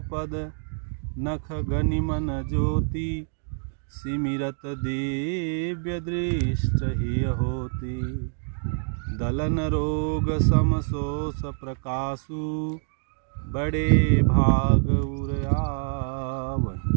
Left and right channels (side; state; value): left; silent; digital silence